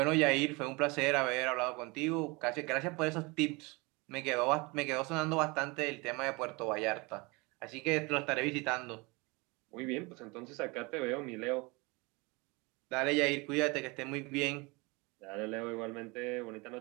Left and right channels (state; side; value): quieter; left; 26.5 dB